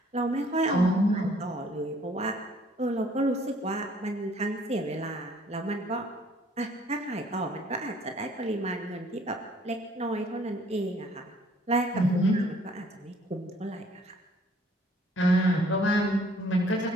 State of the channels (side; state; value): both; normal; correlation 0.59